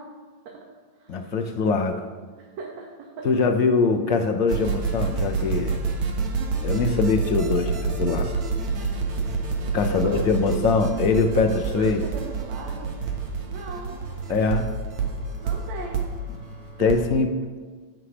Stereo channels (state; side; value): late; left; 9.0 ms